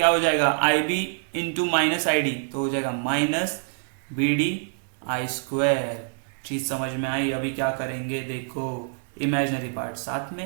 हो जाएगा IB इंटू माइनस ID तो हो जाएगा माइनस BD I स्क्वायर। चीज समझ में आई? अभी क्या करेंगे देखो, इमेजिनरी पार्ट साथ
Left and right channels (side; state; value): left; silent; 60 dB below the other